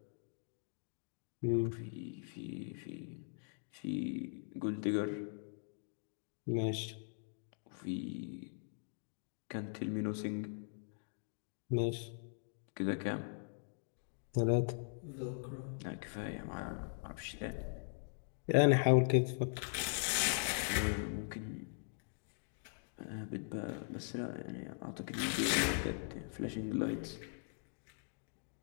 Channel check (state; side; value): silent; right; digital silence